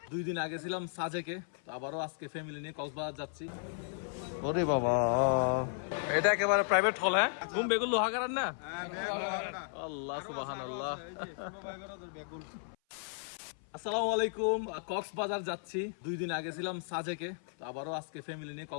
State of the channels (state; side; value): silent; right; 55 dB below the other